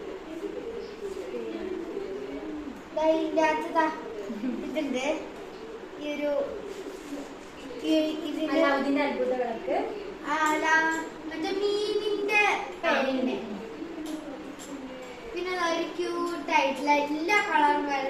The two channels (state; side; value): identical; both; correlation 1.00